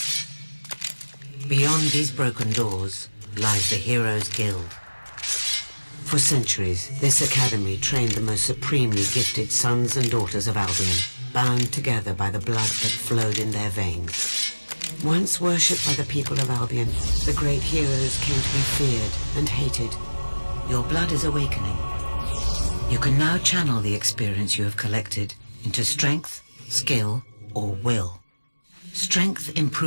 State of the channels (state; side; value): inverted; both; correlation -1.00